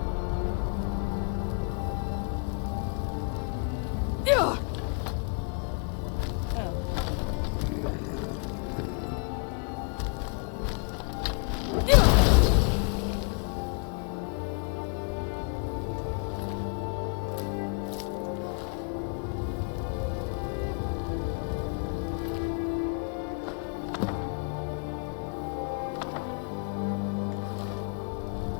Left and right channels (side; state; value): right; quieter; 37.3 dB